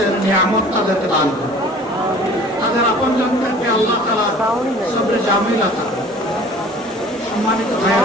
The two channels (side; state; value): both; normal; correlation 0.48